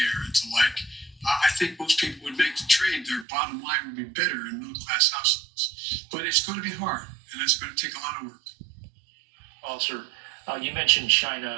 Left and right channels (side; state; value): left; drops out; at 3.2 s